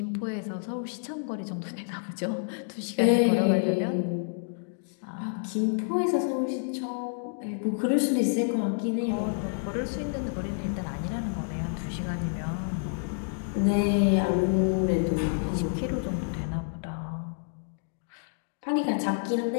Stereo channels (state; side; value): silent; right; digital silence